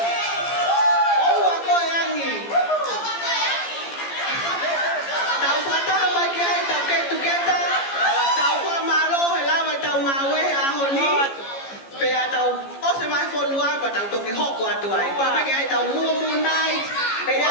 Tao tôi cái hộp của tuổi qua mấy cái tao mua night cái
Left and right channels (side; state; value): right; late; 15 ms